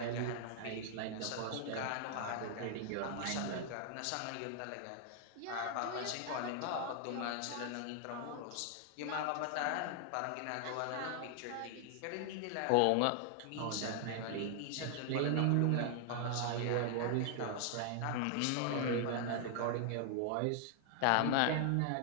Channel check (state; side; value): different; both; correlation 0.00